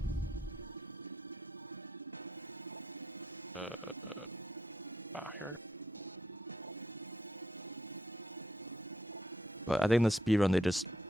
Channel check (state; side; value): normal; both; correlation 0.79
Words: Here. But I think in the speedrun they just